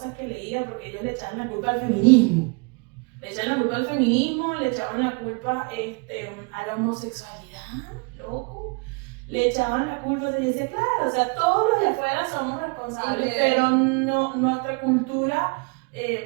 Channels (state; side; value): quieter; left; 32.6 dB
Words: que leía, porque ellos le echaban la culpa al feminismo. Le echaban la culpa al feminismo, le echaban la culpa a la homosexualidad, loco. Le echaban la culpa, se decía, claro, o sea, todos los de afuera somos responsables, pero no, nuestra cultura